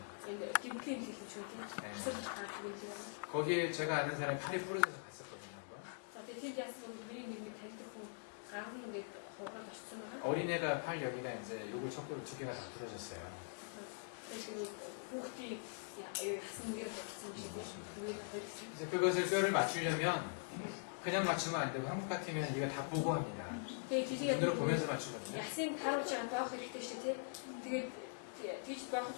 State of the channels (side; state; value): right; silent; digital silence